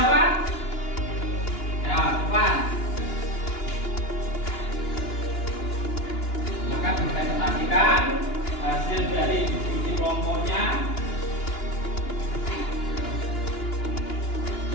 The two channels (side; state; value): right; late; 2.9 ms